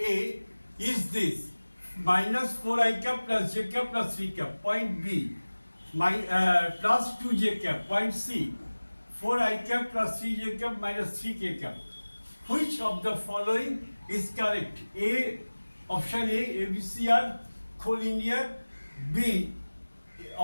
is this, minus 4i cap plus j cap plus 3 cap. Point B, plus 2j cap. Point C, 4i cap plus 3j cap minus 3k cap. Which of the following is correct? A, option A, ABC are collinear. B,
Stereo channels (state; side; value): inverted; both; correlation -1.00